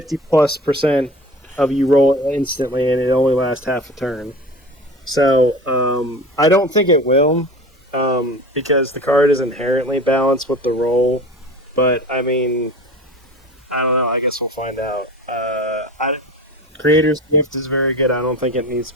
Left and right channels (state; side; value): normal; both; correlation 0.36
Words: of you roll instantly and it only lasts half a turn. So, I don't think it will, because the card is inherently balanced with the roll. But, I mean, I don't know. I guess we'll find out. Creator's Gift is very good. I don't think it needs to